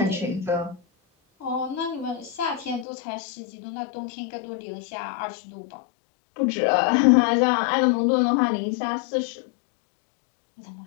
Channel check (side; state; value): right; drops out; at 2.9 s